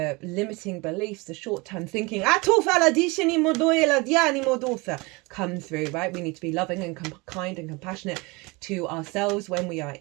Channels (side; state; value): left; quieter; 25.8 dB